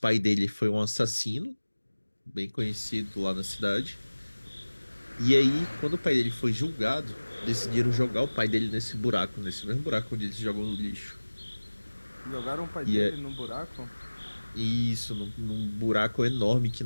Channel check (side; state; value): both; inverted; correlation -1.00